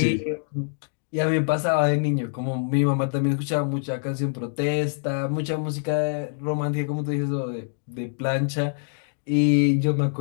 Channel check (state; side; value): silent; right; digital silence